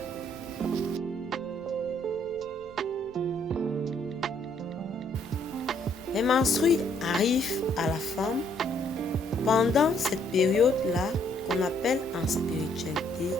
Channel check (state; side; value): noise; left; rumble, 27 dB below the sound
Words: Les menstrues arrivent à la femme pendant cette période-là qu'on appelle en spiritualité